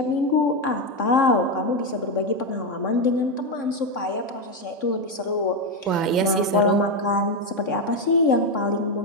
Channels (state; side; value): normal; both; correlation 0.08